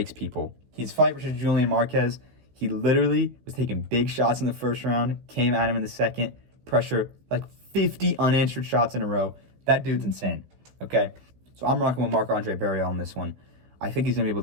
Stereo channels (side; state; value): left; late; 16 ms